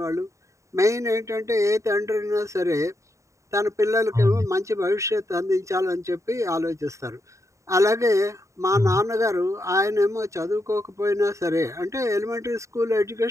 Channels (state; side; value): late; left; 0.15 ms